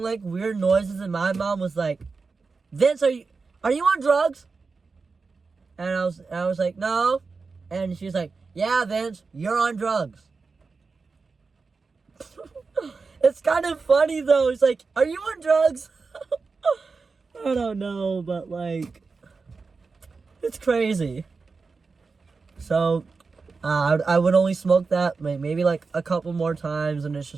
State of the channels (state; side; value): quieter; left; 4.5 dB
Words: weird noises, and my mom was like, Vince, are you on drugs? And I was like, no. And she's like, yeah, Vince, you're on drugs. It's kind of funny though. It's like, are you on drugs? I don't know, but it's crazy. So I would only smoke that maybe a couple more times, and it's